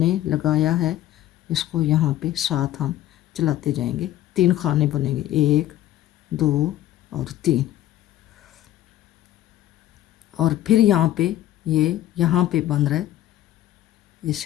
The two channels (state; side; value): quieter; right; 13.5 dB